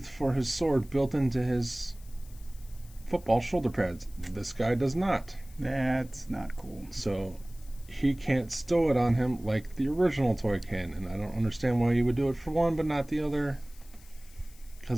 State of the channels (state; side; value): noise; left; hiss, 24 dB below the sound